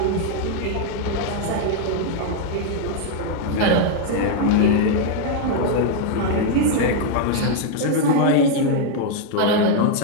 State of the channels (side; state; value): both; different; correlation 0.00